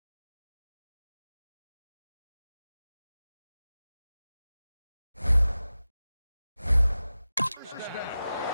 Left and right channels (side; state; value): both; inverted; correlation -0.95